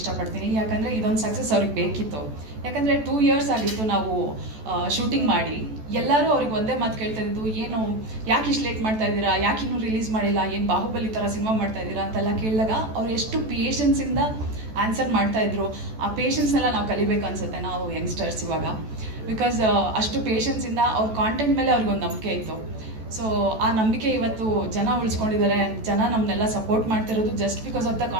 ಯಾಕಂದರೆ ಇದೊಂದು ಸಕ್ಸಸ್ ಅವ್ರಿಗೆ ಬೇಕಿತ್ತು. ಯಾಕಂದರೆ 2 years ಆಗಿತ್ತು ನಾವು ಶೂಟಿಂಗ್ ಮಾಡಿ. ಎಲ್ಲರೂ ಅವ್ರಿಗೆ ಒಂದೇ ಮಾತು ಕೇಳ್ತಾ ಇದ್ದು, ಏನು ಯಾಕೆ ಇಷ್ಟು ಲೇಟ್ ಮಾಡ್ತಾ ಇದ್ದೀರಾ, ಯಾಕೆ ಇನ್ನೂ ರಿಲೀಸ್ ಮಾಡಿಲ್ಲ, ಏನು ಬಾಹುಬಲಿ ಥರ ಸಿನಿಮಾ ಮಾಡ್ತಾ ಇದ್ದೀರಾ ಅಂತೆಲ್ಲ ಕೇಳಿದಾಗ ಅವ್ರು ಎಷ್ಟು ಪೇಷನ್ಸಿಂದ ಆನ್ಸರ್ ಮಾಡ್ತಾಯಿದ್ರು. ಆ ಪೇಷನ್ಸ್ನೆಲ್ಲ ನಾವು ಕಲಿಬೇಕು ಅನಿಸುತ್ತೆ ನಾವು ಯಂಗ್ಸ್ಟರ್ಸ್ ಇವಾಗ. ಬಿಕಾಸ್ ಅಷ್ಟು ಪೇಷನ್ಸಿಂದ ಅವ್ರ ಕಾಂಟೆಂಟ್ ಮೇಲೆ ಅವ್ರಿಗೊಂದು ನಂಬಿಕೆ ಇತ್ತು. ಸೊ ಆ ನಂಬಿಕೆ ಇವತ್ತು ಜನ ಉಳಿಸ್ಕೊಂಡಿದ್ದಾರೆ. ಜನ ನಮ್ಮನ್ನೆಲ್ಲ ಸಪೋರ್ಟ್ ಮಾಡ್ತಿರೋದು just because of the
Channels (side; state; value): left; late; 14 ms